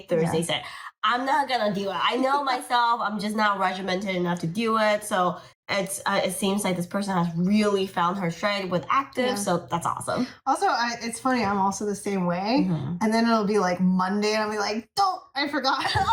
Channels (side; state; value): both; identical; correlation 1.00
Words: Thursday, Saturday. I'm not going to do it. I know myself. I'm just not regimented enough to do it. So it seems like this person has really found her stride with active. So that's awesome. Also, it's funny. I'm also the same way. And then it'll be like Monday and I'll be like, I forgot.